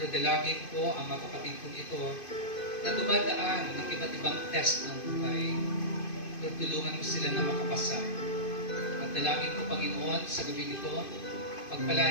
dalangin ko ang mga kapatid kong ito na dumadaan ng iba't ibang test ng buhay. Lord, tulungan mo sila na makapasa. At dalangin ko, Panginoon, sa gabi nito,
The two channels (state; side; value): late; right; 2.5 ms